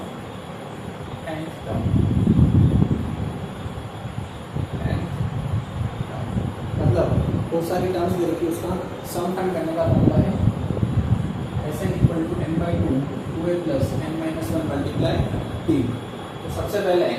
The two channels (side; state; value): both; identical; correlation 1.00